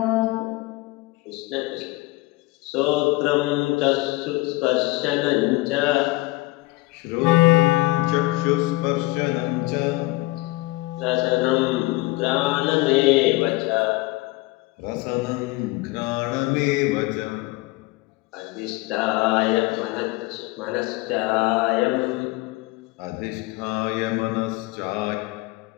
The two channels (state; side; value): quieter; right; 21.1 dB